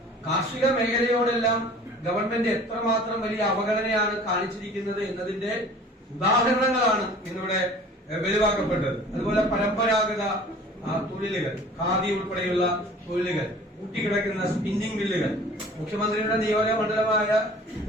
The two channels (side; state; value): both; normal; correlation 0.46